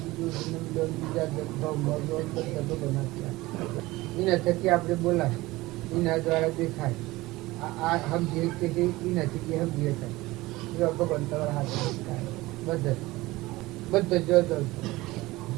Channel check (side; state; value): left; quieter; 19.6 dB